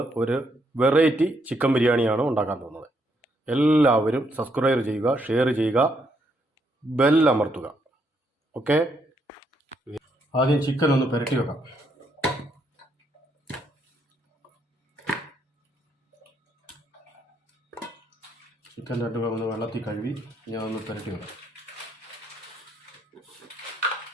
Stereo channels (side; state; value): both; normal; correlation 0.74